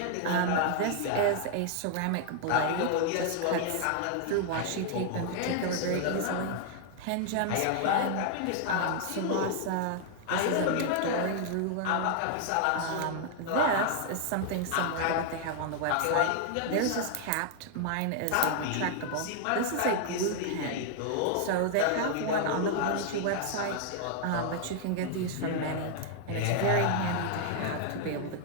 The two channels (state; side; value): different; both; correlation 0.00